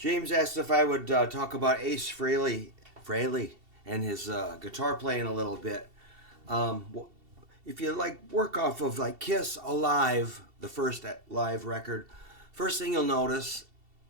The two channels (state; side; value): late; left; 2.7 ms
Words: asked if I would talk about Ace Frehley and his guitar playing a little bit. If you like work off of like Kiss Alive, the first live record, first thing you'll notice